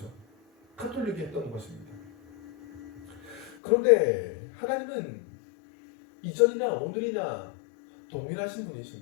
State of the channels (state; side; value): drops out; right; at 3.6 s